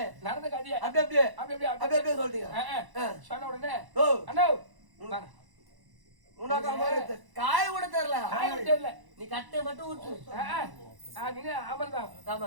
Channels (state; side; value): late; left; 1.0 ms